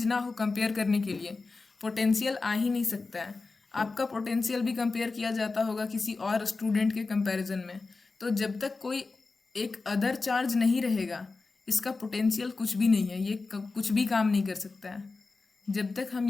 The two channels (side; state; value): right; quieter; 3.9 dB